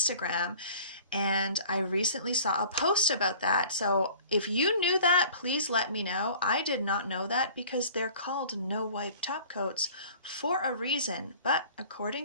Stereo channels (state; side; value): inverted; both; correlation -0.47